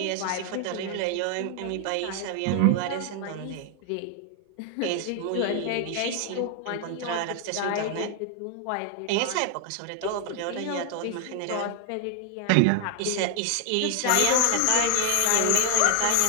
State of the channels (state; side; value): different; both; correlation 0.00